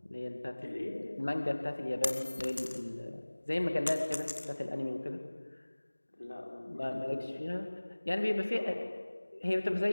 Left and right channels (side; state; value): both; inverted; correlation -1.00